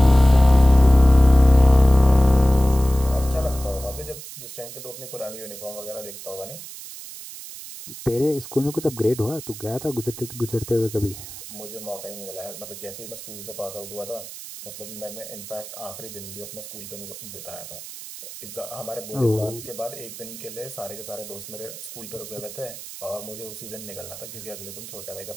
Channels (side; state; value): right; noise; hiss, 13 dB below the sound